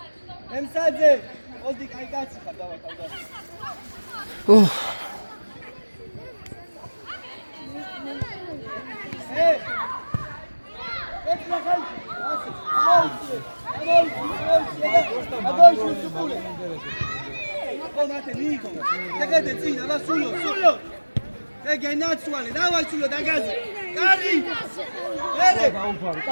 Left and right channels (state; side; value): inverted; both; correlation -1.00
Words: ემსაძე ოდი კაი კაცი ხარ დავათავდა ეს ნახალ ასე ამოიწე სუპულე Pomate Nico, te zina, va sullo. Te che nazionale, dai sullo da casa. Cari! Bene!